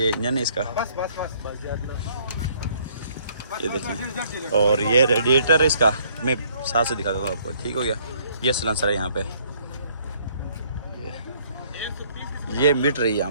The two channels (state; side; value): inverted; both; correlation -0.63